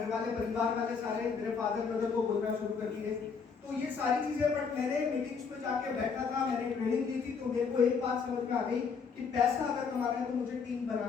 वाले परिवार वाले सारे मेरे फादर मदर को बोलना शुरू कर दिए। तो ये सारी चीजें, बट मैंने मीटिंग्स में जाके बैठा था, मैंने ट्रेनिंग दी थी, तो मेरे को एक बात समझ में आ गई कि पैसा अगर कमाना है तो मुझे टीम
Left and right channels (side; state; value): right; quieter; 5.7 dB